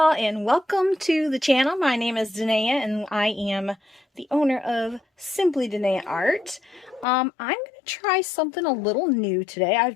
and welcome to the channel. My name is Dinaya and I am the owner of Simply Dinaya Art. I'm going to try something a little new today. I've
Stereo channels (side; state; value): right; drops out; at 7.1 s